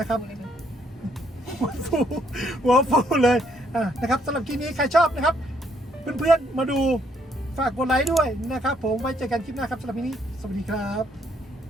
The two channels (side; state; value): both; normal; correlation 0.70